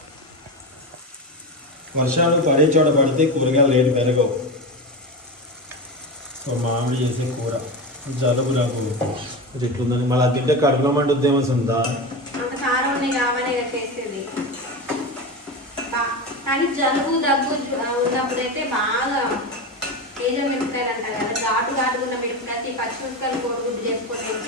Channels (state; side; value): normal; both; correlation 0.21